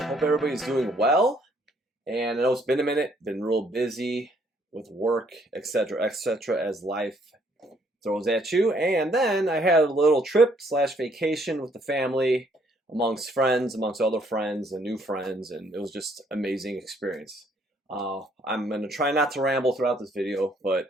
Hope everybody's doing well. And I know it's been a minute, been real busy with work, etc., etc., as life throws at you. And then I had a little trip / vacation with the family, amongst friends, amongst other friends and new friends, and it was just an amazing experience. I'm going to try not to ramble throughout this video, but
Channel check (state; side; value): normal; both; correlation 0.66